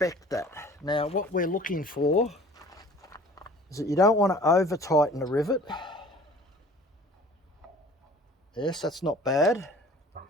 that. Now, what we're looking for is that you don't want to over tighten the rivet. Yes, that's not bad.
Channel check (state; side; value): normal; both; correlation 0.48